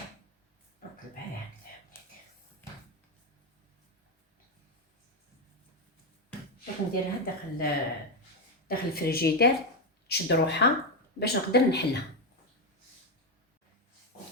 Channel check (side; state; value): both; normal; correlation 0.08